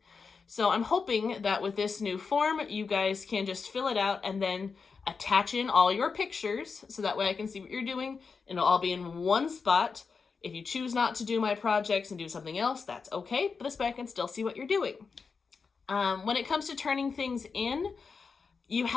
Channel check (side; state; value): right; quieter; 5.2 dB